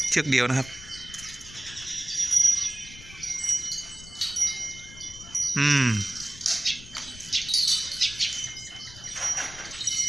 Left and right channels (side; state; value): left; noise; rumble, 17 dB below the sound